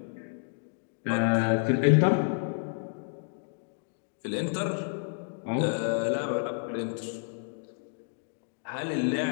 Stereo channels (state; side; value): silent; right; digital silence